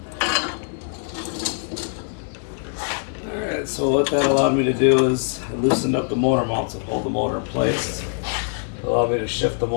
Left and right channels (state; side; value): silent; right; 57 dB below the other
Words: So what that allowed me to do is I loosened up the motor mounts that hold the motor in place. It allowed me to shift the